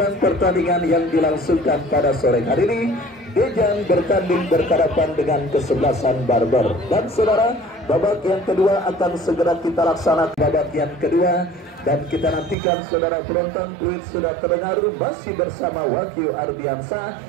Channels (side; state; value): left; drops out; at 12.6 s